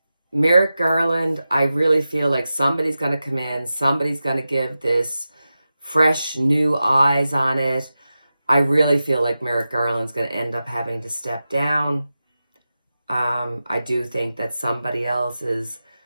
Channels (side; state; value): both; inverted; correlation -0.93